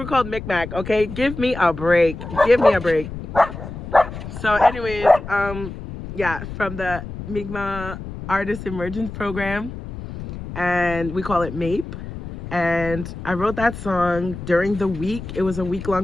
called Mi'kmaq, okay? Give me a break. Give me a break. So anyways, yeah, from the Mi'kmaq Artist Emergence Program, and we call it MAPE. And I wrote that song during the week. It was a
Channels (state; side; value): noise; left; rumble, 10 dB below the sound